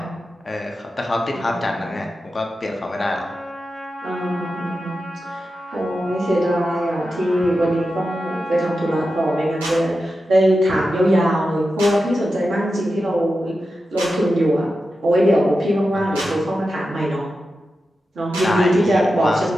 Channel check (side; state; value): both; normal; correlation 0.91